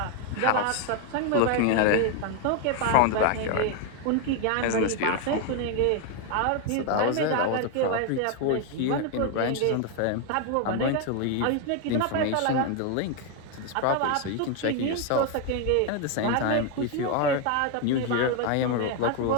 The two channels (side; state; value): both; different; correlation 0.01